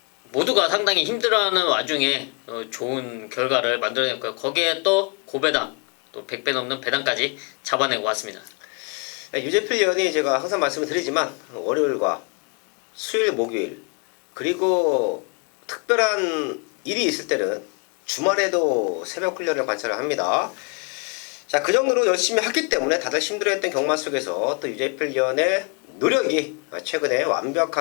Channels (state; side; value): quieter; right; 32.5 dB